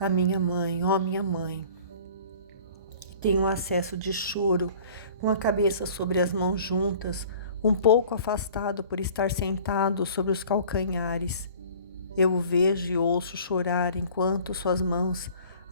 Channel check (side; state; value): both; inverted; correlation -0.47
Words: minha mãe, ó minha mãe. Tenho um acesso de choro, com a cabeça sobre as mãos juntas, um pouco afastado por estar sentado sobre os calcanhares. Eu o vejo e ouço chorar enquanto suas mãos